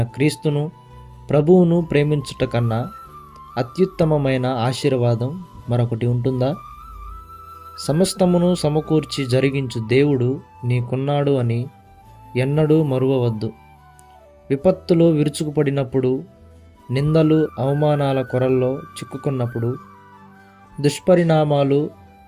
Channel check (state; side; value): identical; both; correlation 1.00